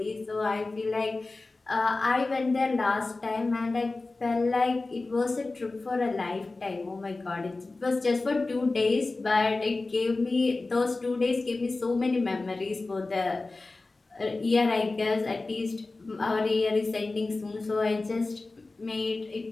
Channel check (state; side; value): quieter; right; 3.4 dB